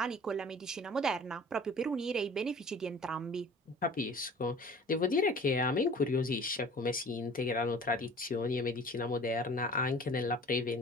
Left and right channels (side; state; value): both; normal; correlation 0.45